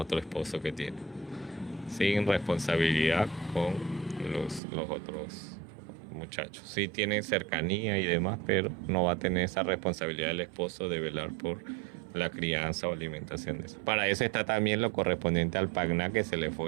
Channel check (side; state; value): left; drops out; at 4.6 s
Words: esposo que tiene, sin responsabilidad con los otros muchachos. Sí tienen cercanía y demás, pero no va a tener esa responsabilidad del esposo de velar por la crianza o alimentación de eso. Para eso está también lo correspondiente al pagná que se le